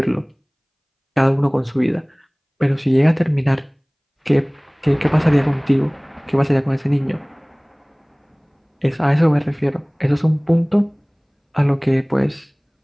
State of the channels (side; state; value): both; identical; correlation 1.00